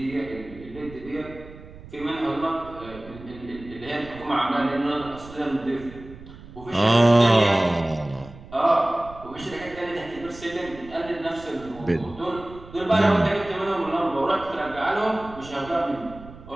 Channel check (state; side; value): noise; right; rumble, 17 dB below the sound